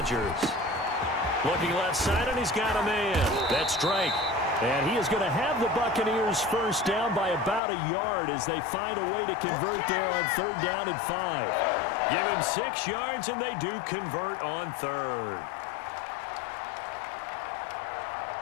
Looking left side, and he's got a man. That's Drake. And he is going to have the Buccaneers first down by about a yard as they find a way to convert there on 3rd down and 5. Give him 6 yards, and they do convert on 3rd.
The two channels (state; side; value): drops out; right; at 7.6 s